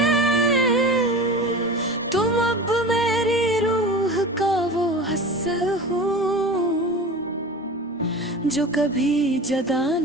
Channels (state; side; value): normal; both; correlation 0.33